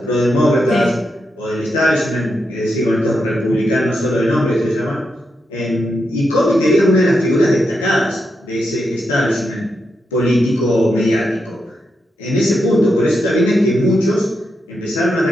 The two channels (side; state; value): both; normal; correlation 0.84